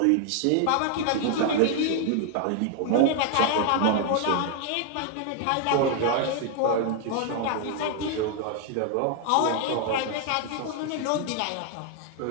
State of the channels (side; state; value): both; different; correlation 0.00